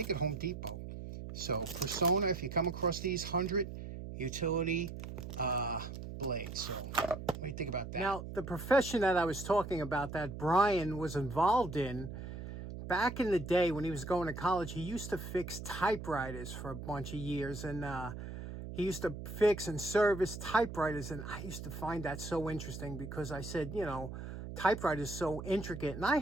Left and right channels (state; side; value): noise; right; hum, 9 dB below the sound